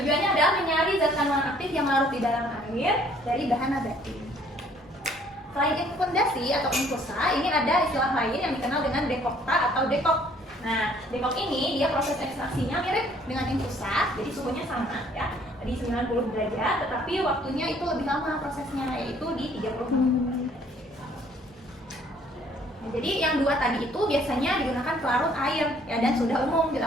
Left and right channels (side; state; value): both; normal; correlation 0.60